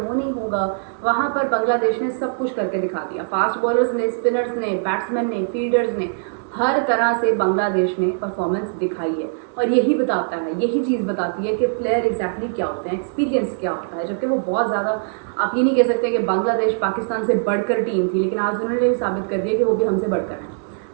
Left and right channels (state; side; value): silent; left; 65 dB below the other